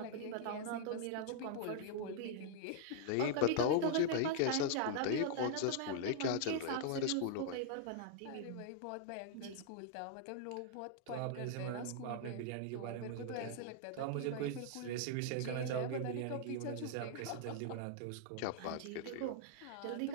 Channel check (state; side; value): different; both; correlation -0.01